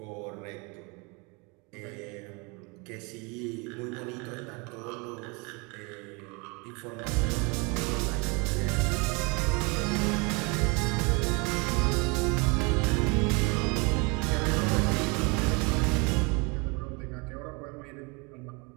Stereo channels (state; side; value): quieter; left; 29.8 dB